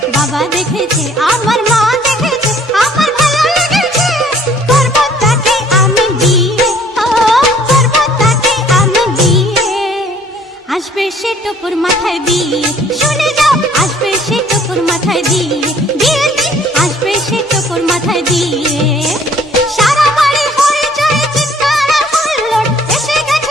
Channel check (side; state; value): both; normal; correlation 0.57